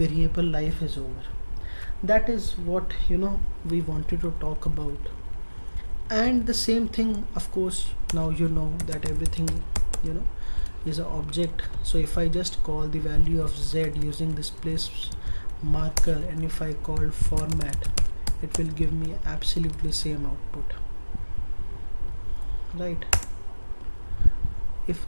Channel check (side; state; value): both; inverted; correlation -1.00